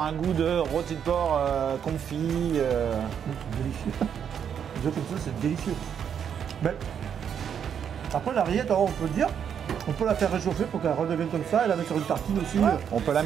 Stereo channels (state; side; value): quieter; left; 8.1 dB